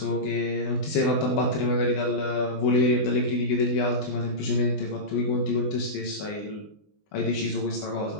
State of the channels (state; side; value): late; right; 20 ms